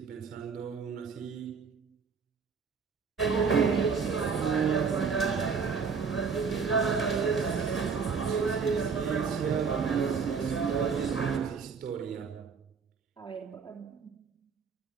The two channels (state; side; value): quieter; left; 5.6 dB